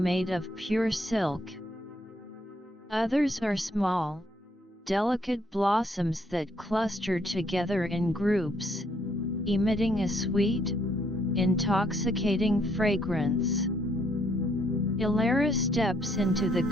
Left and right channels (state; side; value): normal; both; correlation 0.70